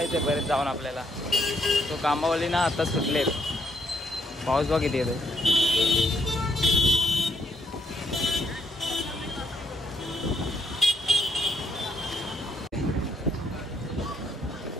आहे. परत जाऊन आपल्याला तो कामावली ना आता सुटले. पाऊस बघ किती येतो.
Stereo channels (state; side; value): normal; both; correlation 0.74